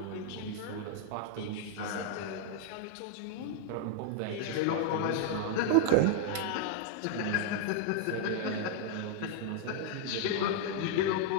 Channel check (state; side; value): different; both; correlation 0.00